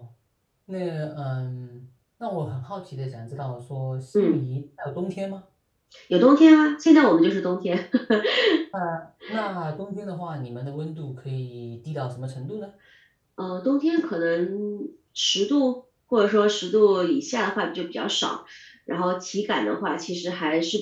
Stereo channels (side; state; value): both; identical; correlation 1.00